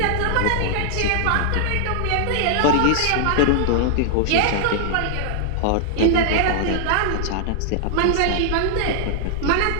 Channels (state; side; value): different; both; correlation -0.01